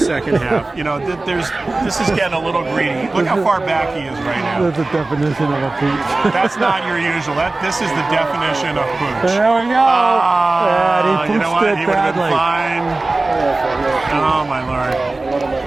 half. You know, this is getting a little greedy. Look how far back he is right now. That's the definition of a pooch. That's not your usual. This is the definition of pooch. There we go. And he pooched you know what? it He would have been badly. fine. Oh my Lord.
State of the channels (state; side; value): quieter; left; 3.2 dB